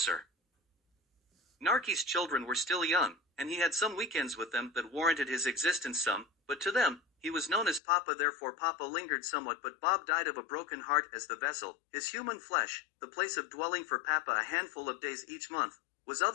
Narky's children were still young, and he had some weekends with them that warranted his existence some, but to them, he was known as Papa, therefore Papa lingered somewhat, but Bob died of a broken heart as the vessel, his human flesh, the place of dwelling for Papa a handful of days each month, was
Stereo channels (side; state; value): right; drops out; at 7.8 s